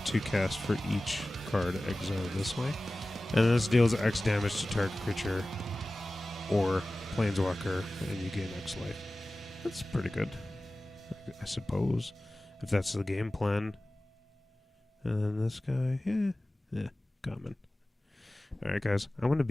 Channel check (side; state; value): both; normal; correlation 0.97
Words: to cast for each card exiled this way. And this deals X damage to target creature or planeswalker, and you gain X life. That's pretty good, I suppose, if that's the game plan. And this guy, yeah, common. Alright, guys, I'm going to